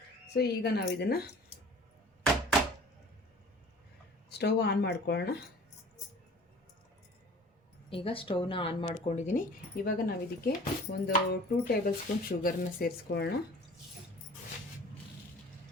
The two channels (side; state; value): both; normal; correlation 0.46